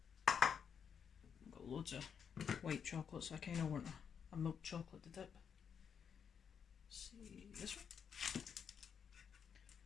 I've got loads of white chocolate, so I kind of want a milk chocolate to dip. Let's see this one.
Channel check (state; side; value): quieter; right; 7.2 dB